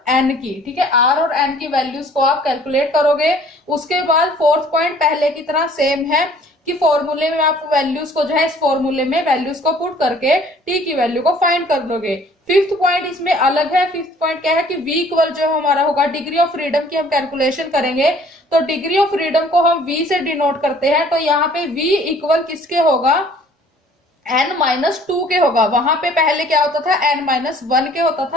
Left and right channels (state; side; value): normal; both; correlation 0.54